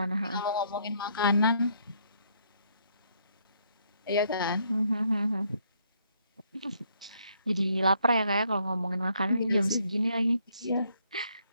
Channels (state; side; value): inverted; both; correlation -0.70